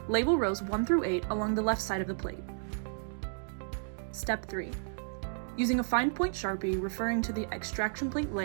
Label rows 1 through 8 along the left side of the plate. Step 3. Using a fine point Sharpie referring to the extraction plate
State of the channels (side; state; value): left; silent; digital silence